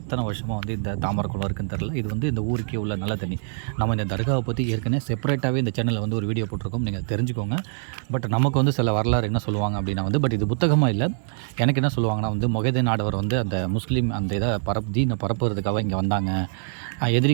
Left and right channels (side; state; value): left; silent; 62 dB below the other